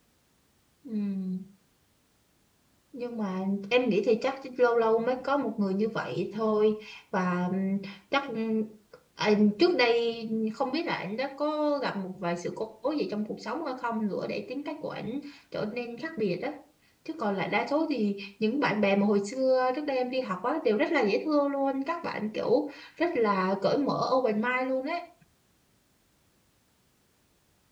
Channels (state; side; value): identical; both; correlation 1.00